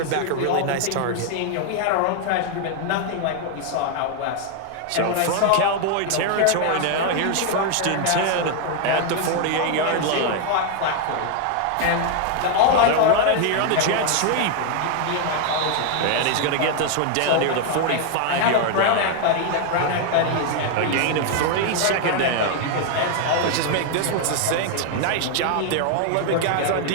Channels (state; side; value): different; both; correlation 0.00